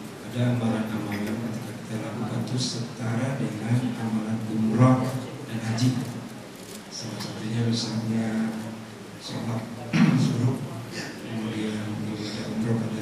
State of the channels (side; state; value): both; identical; correlation 1.00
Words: ada amalan-amalan ketika kita lakukan itu setara dengan amalan umroh dan haji. Salah satunya misalnya sholat suruh, kemudian ibadah umroh pada